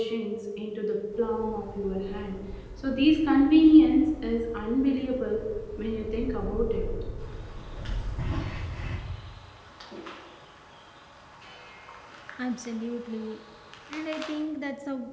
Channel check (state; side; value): identical; both; correlation 1.00